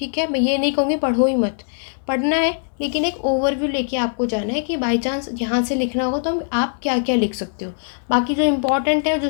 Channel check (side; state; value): right; silent; 64 dB below the other